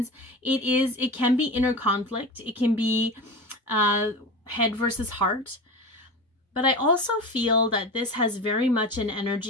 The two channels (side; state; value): both; normal; correlation 0.29